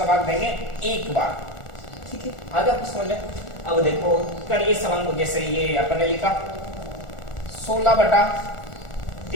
भाग देंगे 1 बार, ठीक है। आगे आपको समझ में। अब देखो करिए सवाल को, जैसे ये अपन ने लिखा 16 बटा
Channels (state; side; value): late; right; 1.4 ms